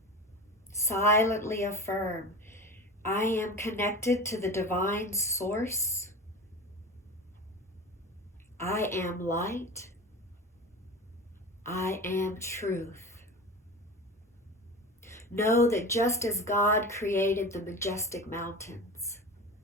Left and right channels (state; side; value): normal; both; correlation 0.31